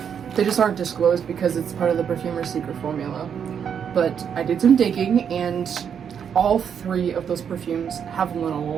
They just aren't disclosed because it's part of the perfumer's secret formula. But I did some digging, and all three of those perfumes have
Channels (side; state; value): left; quieter; 7.8 dB